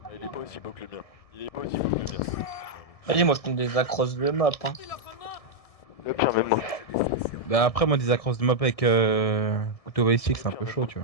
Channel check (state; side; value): late; right; 1.7 ms